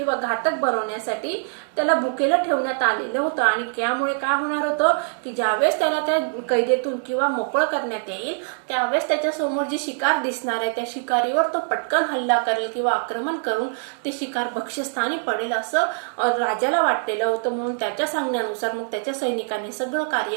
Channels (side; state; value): left; silent; 63 dB below the other